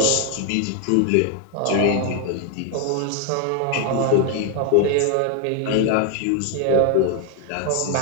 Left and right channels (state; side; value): different; both; correlation 0.00